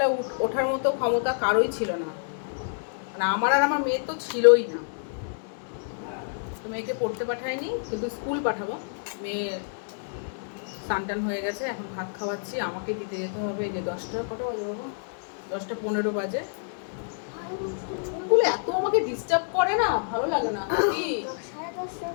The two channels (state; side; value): silent; right; digital silence